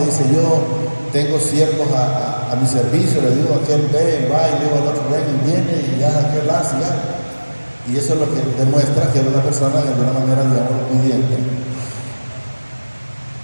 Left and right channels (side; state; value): both; inverted; correlation -1.00